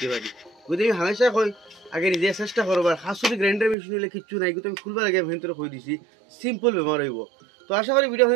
পারি। গতিকে হামেশা কই আগে নিজে চেষ্টা করবার খাস যদি গ্রাইন্ডার মেশিন হলে কিচ্ছু নাই কিন্তু আমি খুলবার আগে ভিতরে কই দিছি সিম্পল ব্যবহার হইব। তো আশা করি ভিডিও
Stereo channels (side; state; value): left; drops out; at 3.8 s